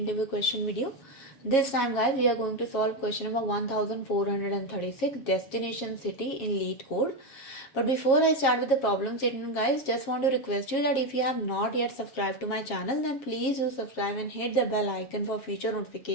question video. This time guys, we are going to solve question number 1436, destination city in LeetCode. But before I start with the problem statement guys, just want to request you that if you have not yet subscribed to my channel, then please do subscribe and hit the bell icon for future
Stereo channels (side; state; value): right; late; 7.4 ms